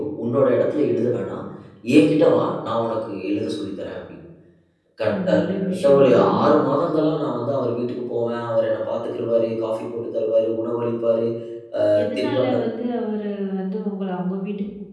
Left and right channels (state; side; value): identical; both; correlation 1.00